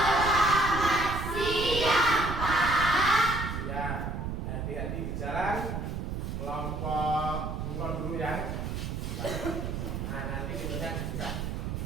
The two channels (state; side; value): noise; right; rumble, 4 dB below the sound